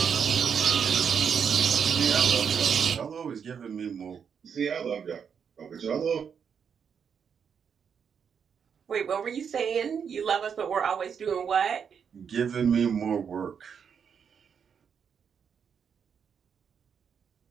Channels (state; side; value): quieter; left; 7.1 dB